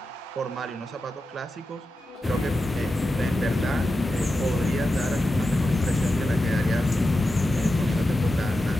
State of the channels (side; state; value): both; normal; correlation 0.91